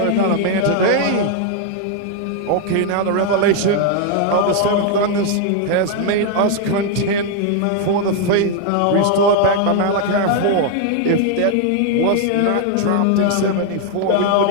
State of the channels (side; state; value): both; different; correlation 0.00